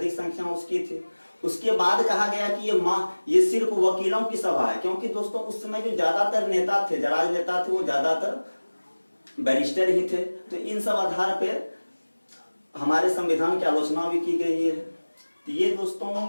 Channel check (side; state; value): both; inverted; correlation -1.00